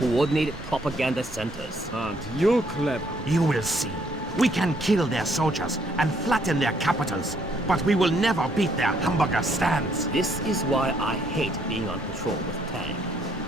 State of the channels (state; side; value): normal; both; correlation 0.69